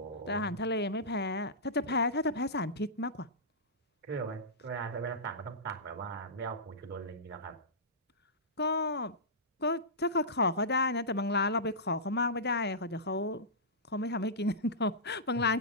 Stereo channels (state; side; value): normal; both; correlation -0.17